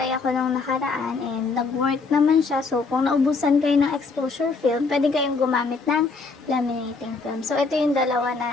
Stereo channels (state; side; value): quieter; right; 4.2 dB